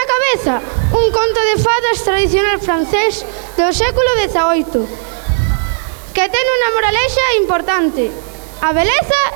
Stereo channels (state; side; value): silent; left; digital silence